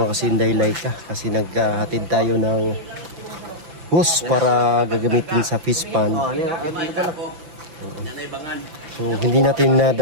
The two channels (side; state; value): left; late; 5.9 ms